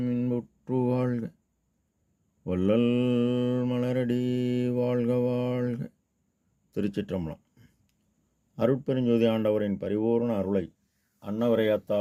இன்புற்று வாழ்க, வள்ளல் மலரடி வாழ்க வாழ்க. திருச்சிற்றம்பலம். அருட்பெருஞ்சோதி ஆண்டவரின் பரிபூர்ண அருளை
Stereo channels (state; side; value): identical; both; correlation 1.00